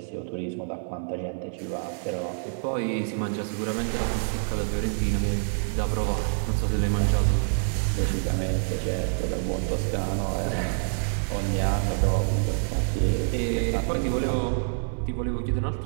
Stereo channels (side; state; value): left; silent; 60 dB below the other